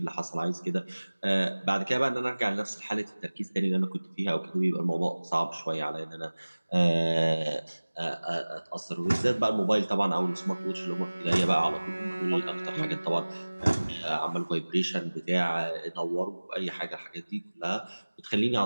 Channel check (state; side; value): inverted; both; correlation -1.00